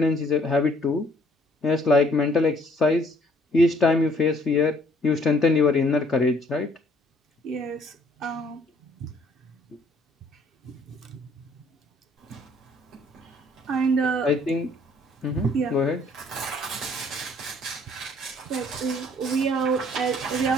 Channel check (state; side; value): normal; both; correlation 0.61